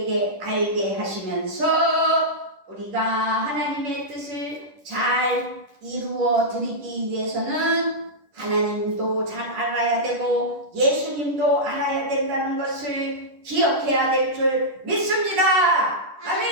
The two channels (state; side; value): late; left; 10 ms